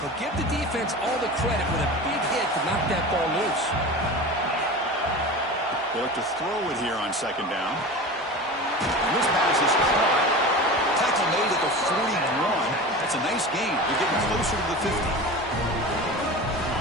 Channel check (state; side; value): normal; both; correlation 0.32